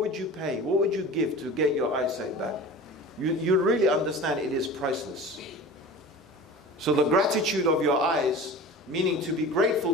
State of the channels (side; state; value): both; normal; correlation 0.36